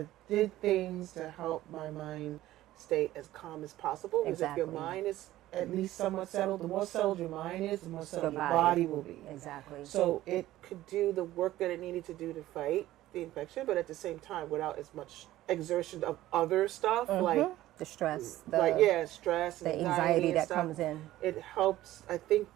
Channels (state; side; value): quieter; left; 15.1 dB